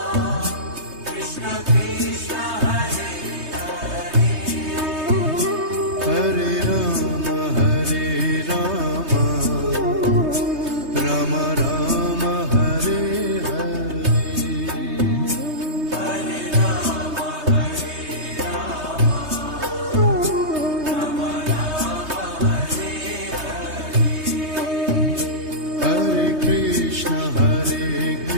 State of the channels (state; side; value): late; left; 3.2 ms